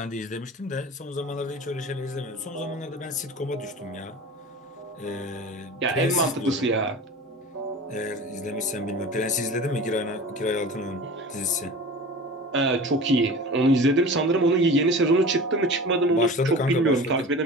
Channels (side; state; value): both; normal; correlation 0.37